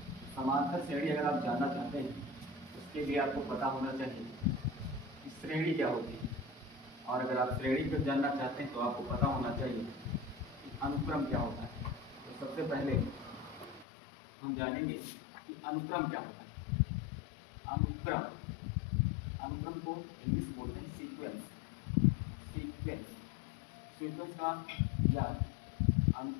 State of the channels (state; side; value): drops out; right; at 13.9 s